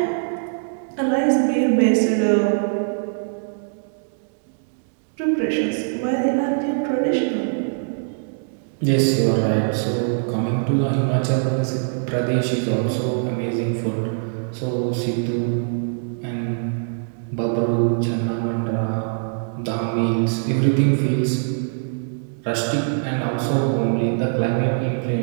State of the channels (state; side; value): silent; left; digital silence